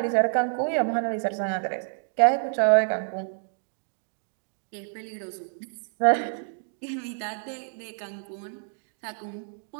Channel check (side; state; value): left; silent; digital silence